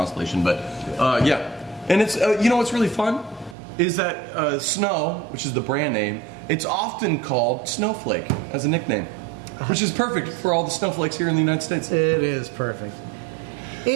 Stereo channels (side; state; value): left; drops out; at 3.6 s